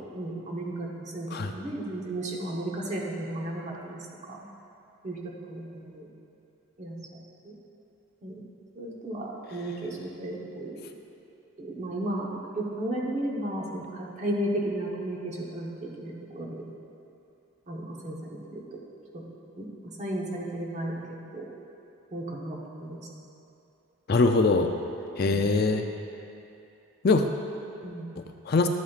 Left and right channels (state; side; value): normal; both; correlation 0.45